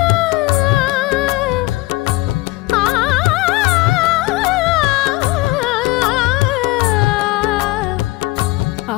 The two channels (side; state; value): right; quieter; 20.4 dB